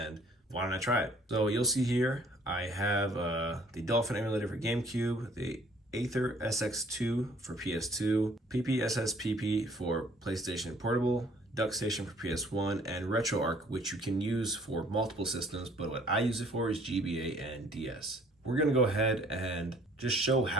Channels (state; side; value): normal; both; correlation 0.58